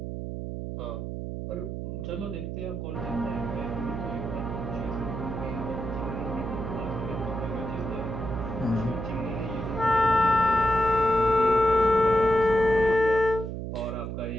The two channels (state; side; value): noise; right; hum, 5 dB below the sound